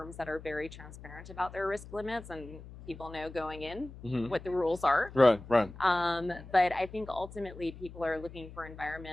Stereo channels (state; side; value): noise; left; hum, 15 dB below the sound